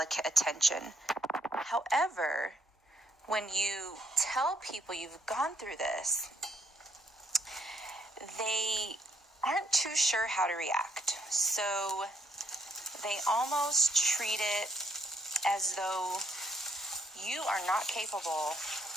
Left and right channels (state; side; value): normal; both; correlation 0.69